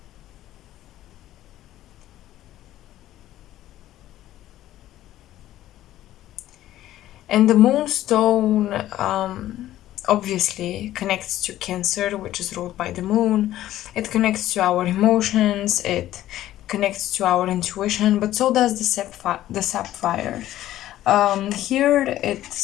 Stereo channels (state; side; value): quieter; right; 13.7 dB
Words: And the Moonstone obviously connects to Cancer, which is ruled by the moon. It connects to our emotions, it connects to our intuition, but so does the Sapphire. Here it